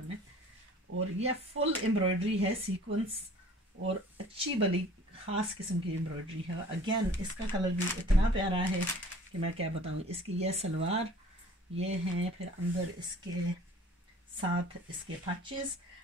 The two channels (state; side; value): normal; both; correlation 0.49